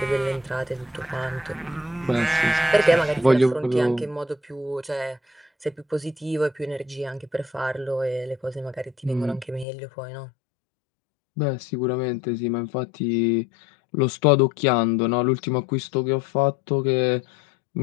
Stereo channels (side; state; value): right; drops out; at 9.7 s